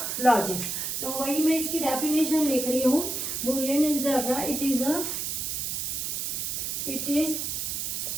logic. तो वही मैं इसकी डेफिनेशन लिख रही हूँ। Boolean algebra it is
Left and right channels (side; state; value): right; noise; hiss, 2 dB below the sound